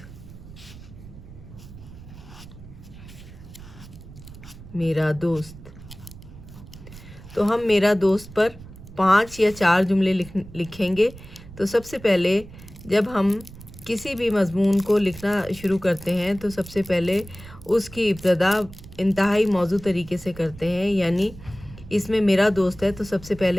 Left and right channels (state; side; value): noise; right; rumble, 17 dB below the sound